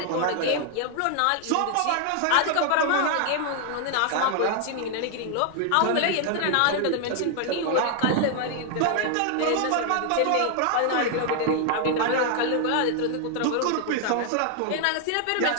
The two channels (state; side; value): different; both; correlation 0.00